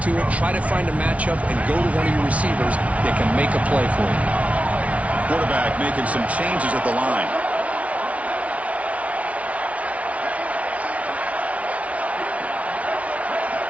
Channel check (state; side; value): late; left; 0.065 ms